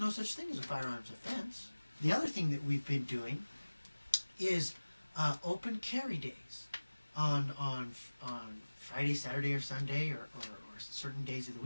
such thing as a firearms offense. The other thing that we've been doing is open carry days on Friday, Saturday, or Sunday, or certain days of the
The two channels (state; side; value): inverted; both; correlation -1.00